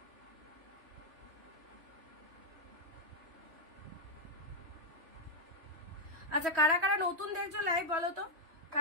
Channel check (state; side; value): late; left; 3.1 ms